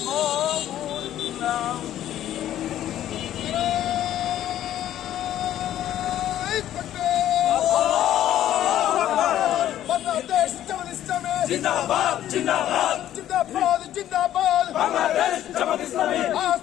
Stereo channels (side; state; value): right; quieter; 12.1 dB